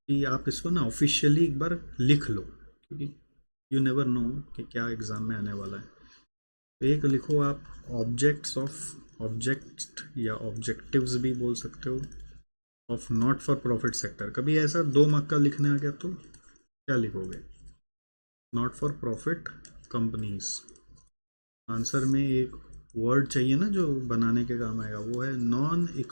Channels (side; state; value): both; inverted; correlation -1.00